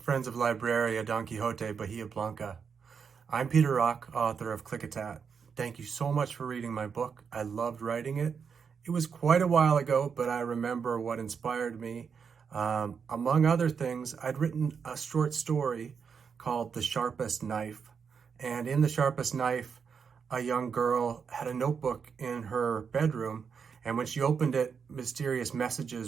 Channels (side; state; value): left; quieter; 6.3 dB